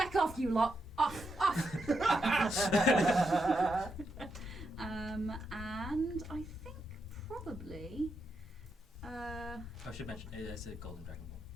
off you lot, off. And I think probably. I should mention it is a golden dragonborn,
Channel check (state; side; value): normal; both; correlation 0.83